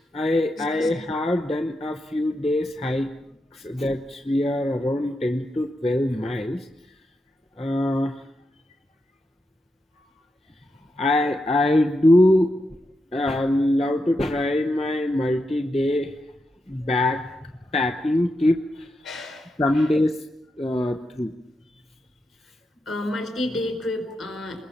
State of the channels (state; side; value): normal; both; correlation 0.86